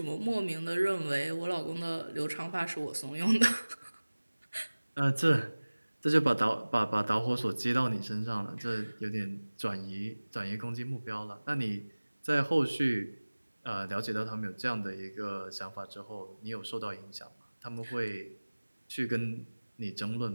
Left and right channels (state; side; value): inverted; both; correlation -1.00